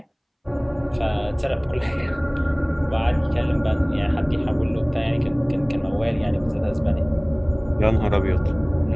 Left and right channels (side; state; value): both; identical; correlation 1.00